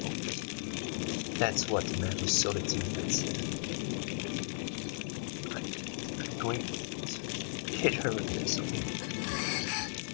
That's what the man who sold it to me had said. I'm going to hit her with this, okay?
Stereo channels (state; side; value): silent; right; 54 dB below the other